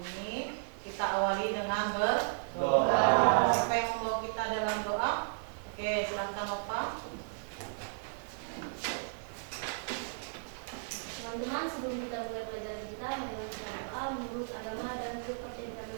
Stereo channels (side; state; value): left; silent; digital silence